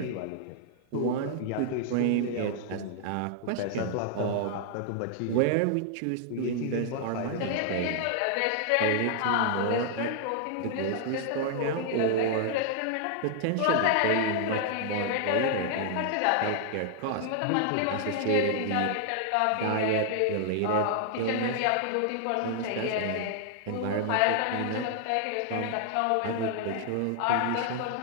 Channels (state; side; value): different; both; correlation 0.00